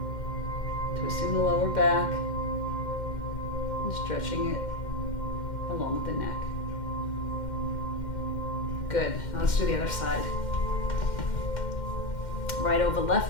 twisting the lower back and stretching it along with the neck. Good. Now let's do the other side. Right over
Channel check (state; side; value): late; right; 2.1 ms